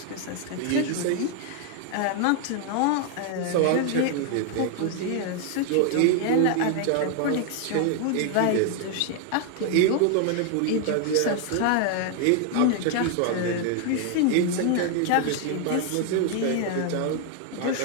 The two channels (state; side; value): different; both; correlation 0.00